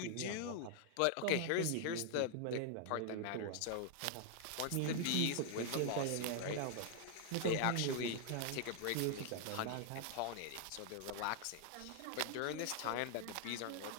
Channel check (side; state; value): both; different; correlation 0.00